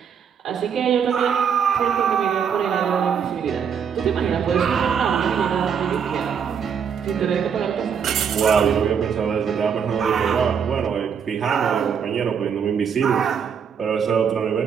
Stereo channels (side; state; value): left; quieter; 7.3 dB